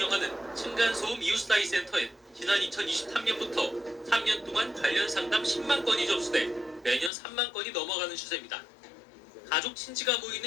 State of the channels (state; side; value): drops out; right; at 7.1 s